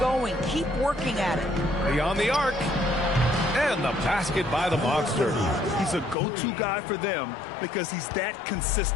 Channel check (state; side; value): drops out; right; at 6.2 s